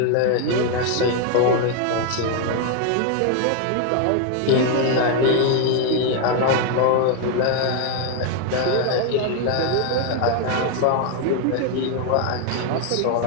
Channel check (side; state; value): both; different; correlation 0.01